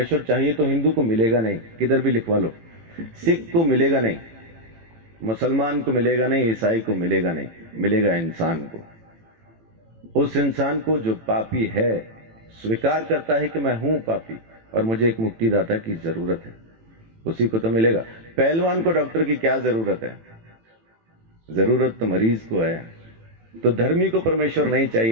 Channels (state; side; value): late; left; 18 ms